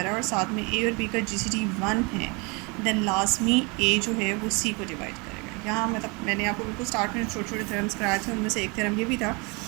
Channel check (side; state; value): left; quieter; 29.5 dB